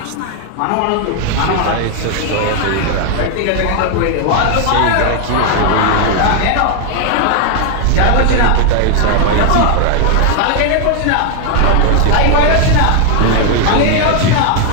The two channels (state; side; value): different; both; correlation 0.00